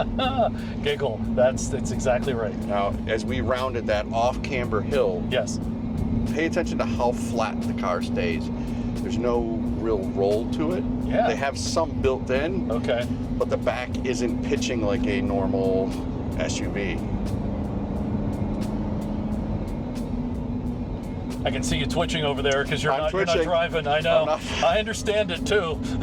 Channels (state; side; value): identical; both; correlation 1.00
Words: Giggle. That's exactly right. Now, as we rounded that off-camber hill, yes, pay attention to how flat the car stays. There's no real roll to it. Yeah. They have some built in. Okay. But the back isn't pitching like a normal SUV. I can see you twitching over there because you're not driving. I know. I understand it too.